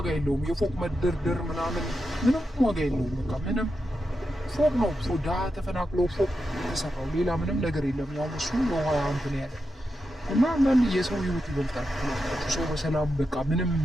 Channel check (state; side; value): normal; both; correlation 0.88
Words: የለውም። የፎቅ መደርደር ምናምን ምንም ዋጋ የለውም። በቃ ምንም ፎቅ ነው። ድሀ ተፈናቅሎ ፎቅ የተሰራው ሌላ ምንም ነገር የለም። ያው እሱ ውሃ እንትን ያለ እና አንዳንድ የሰው ህይወት ይበልጣል። ሰው በሰላም በቃ ምንም